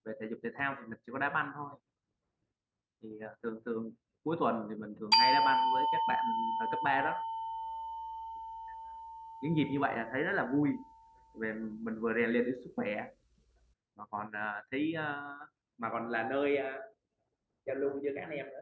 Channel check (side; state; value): both; identical; correlation 1.00